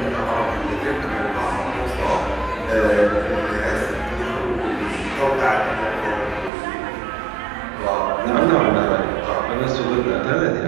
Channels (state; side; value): drops out; left; at 6.5 s